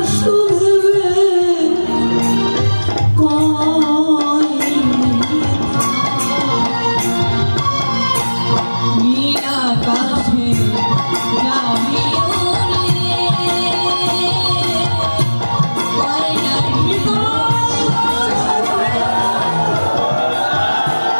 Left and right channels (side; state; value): both; inverted; correlation -1.00